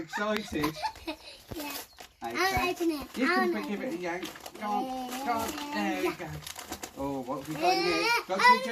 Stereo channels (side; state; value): both; identical; correlation 1.00